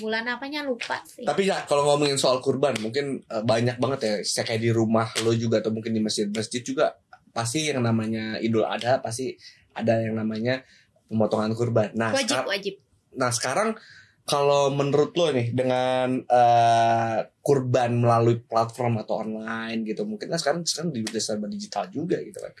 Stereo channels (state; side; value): identical; both; correlation 1.00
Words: bulan apanya lupa sih. Tapi ya kalau ngomongin soal kurban, mungkin banyak banget ya, kayak di rumah lo juga atau mungkin di masjid juga pasti yang namanya Idul Adha, pasti ada yang namanya pemotongan kurban. Nah, wajib. Nah sekarang kalau menurut lo nih dengan kurban melalui platform atau online gitu, mungkin kan sekarang udah serba digital juga gitu kan,